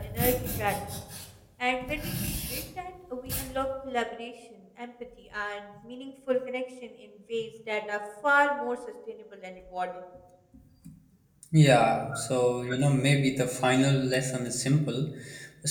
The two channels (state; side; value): identical; both; correlation 1.00